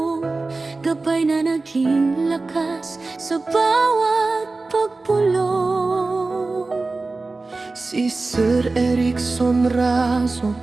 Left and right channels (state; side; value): quieter; left; 3.5 dB